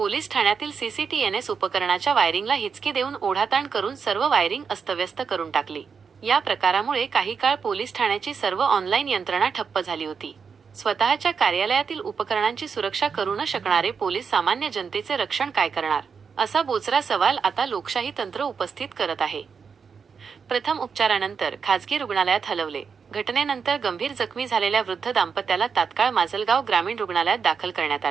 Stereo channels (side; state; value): left; quieter; 6.0 dB